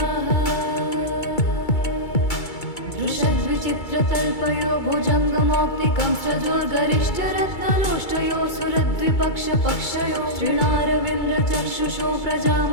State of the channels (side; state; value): right; late; 2.3 ms